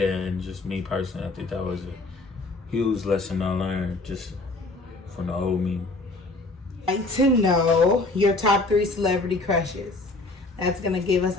and just me personally, I think that was a huge lesson I learned just from the old me. I'd like to know your top 3 celebrity crushes. That's going to give us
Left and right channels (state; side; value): quieter; right; 3.1 dB